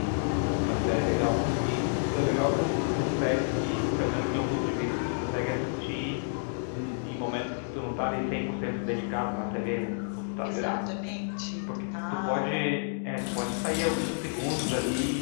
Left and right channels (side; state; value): right; silent; digital silence